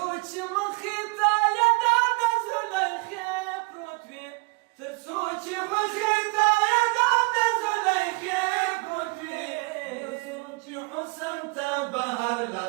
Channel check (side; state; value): left; quieter; 29.0 dB